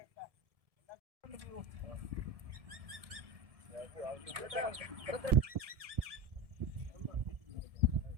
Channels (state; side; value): late; left; 1.7 ms